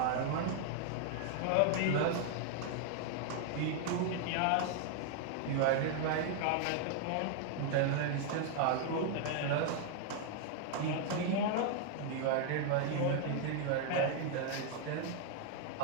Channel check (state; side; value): different; both; correlation 0.00